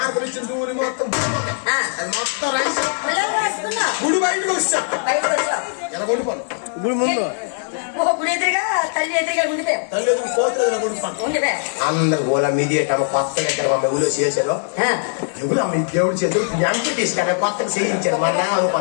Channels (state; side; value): silent; right; 66 dB below the other